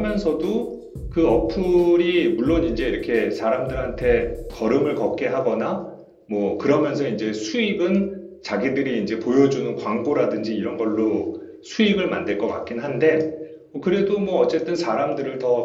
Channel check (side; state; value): both; identical; correlation 1.00